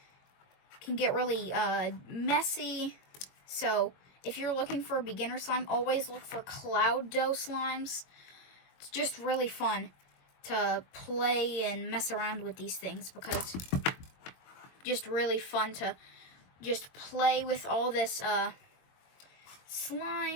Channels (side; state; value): right; late; 22 ms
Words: it can get really messy. So if you're looking for a beginner slime, always look for cloud dough slimes. It's just really fun to play and mess around with these things because just really fun to just play with all this